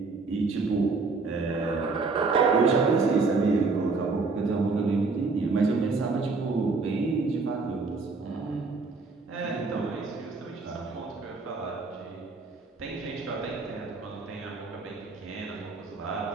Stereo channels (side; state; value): left; quieter; 4.1 dB